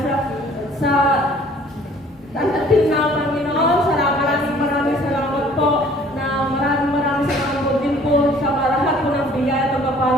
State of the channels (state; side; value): normal; both; correlation 0.55